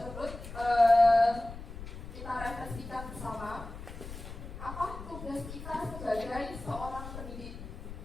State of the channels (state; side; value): noise; left; rumble, 11 dB below the sound